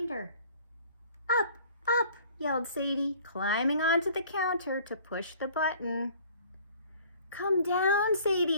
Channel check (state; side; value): inverted; both; correlation -0.52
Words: "Up, up," yelled Sadie, climbing onto the counter to push the button. "Come down,